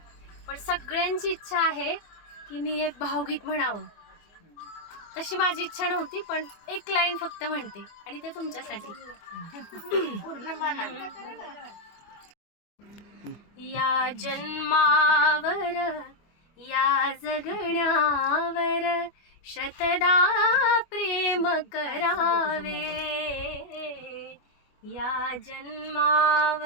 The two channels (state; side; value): late; right; 24 ms